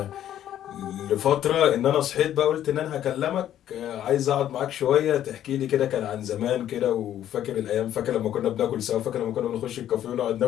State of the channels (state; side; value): quieter; right; 11.4 dB